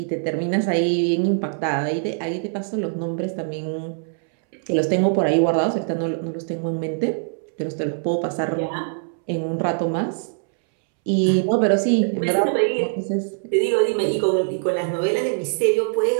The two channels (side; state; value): left; silent; 64 dB below the other